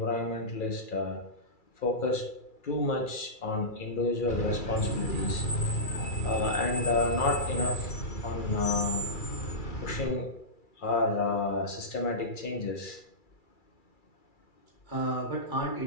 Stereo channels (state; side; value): late; right; 2.3 ms